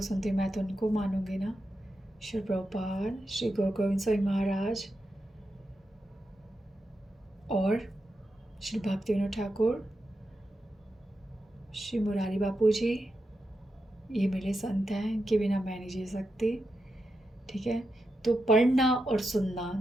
सुनती हूँ मैं तो उनको मानूंगी ना। श्री प्रभुपाद, श्री गुरु गोविंद स्वामी महाराज और श्री भक्ति विनोद ठाकुर, श्री मुरारी बापू जी, ये मेरे संत हैं, इनके बिना मैं नहीं जी सकती। ठीक है, तो पढ़ना और सुनना,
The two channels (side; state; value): both; normal; correlation 0.88